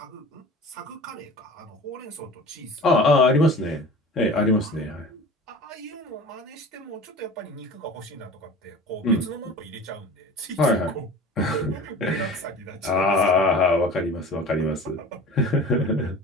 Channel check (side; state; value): both; normal; correlation 0.39